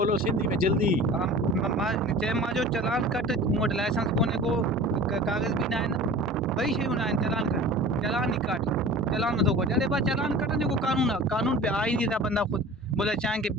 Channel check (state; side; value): normal; both; correlation 0.39